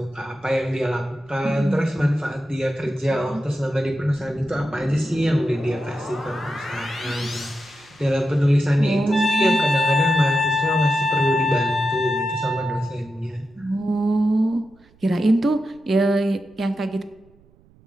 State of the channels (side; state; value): right; noise; rumble, 30 dB below the sound